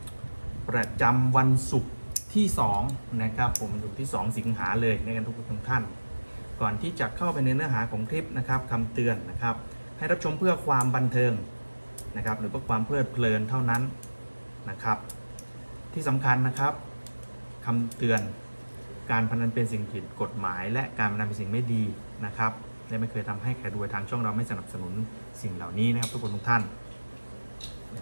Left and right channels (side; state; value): both; inverted; correlation -1.00